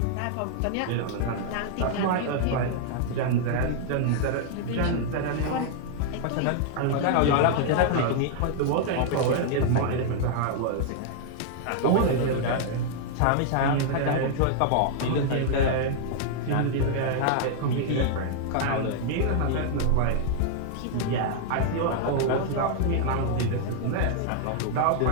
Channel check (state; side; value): different; both; correlation -0.01